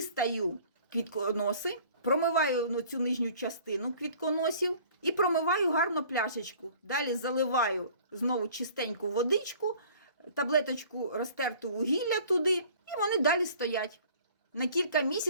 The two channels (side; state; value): both; inverted; correlation -0.51